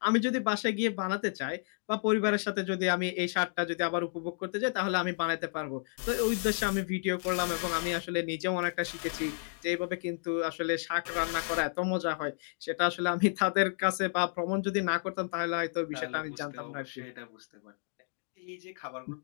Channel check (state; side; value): silent; right; digital silence